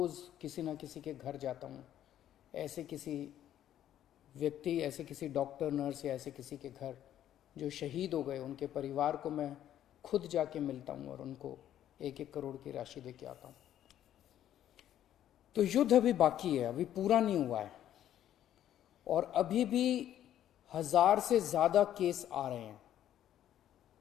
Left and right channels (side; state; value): right; quieter; 11.4 dB